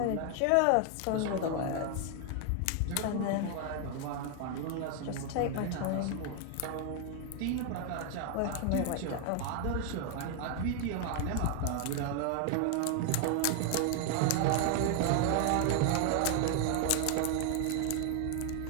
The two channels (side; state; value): both; different; correlation 0.00